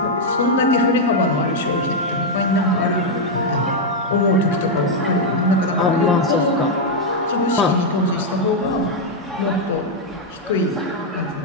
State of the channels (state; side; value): normal; both; correlation 0.00